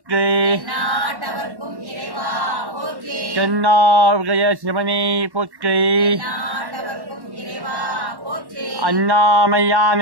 எந்நாட்டவர்க்கும் இறைவா போற்றி. தென்னார்கய சிவனே போற்றி. எந்நாட்டவர்க்கும் இறைவா போற்றி.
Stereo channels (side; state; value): left; late; 1.1 ms